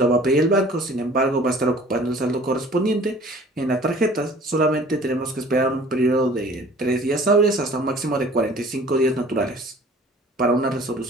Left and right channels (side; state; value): both; normal; correlation 0.49